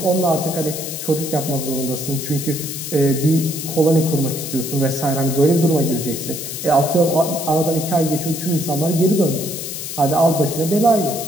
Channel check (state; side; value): noise; left; hiss, 7 dB below the sound